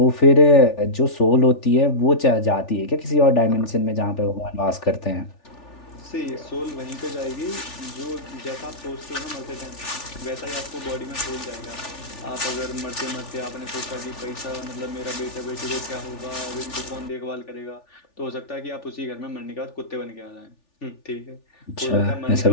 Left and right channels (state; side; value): late; right; 3.4 ms